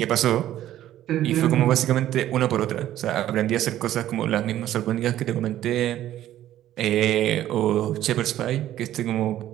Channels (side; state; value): left; quieter; 12.8 dB